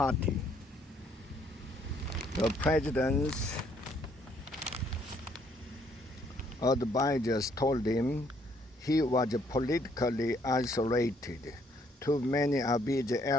The president's advisors told him he was politically isolated. Too many of his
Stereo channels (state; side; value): normal; both; correlation 0.67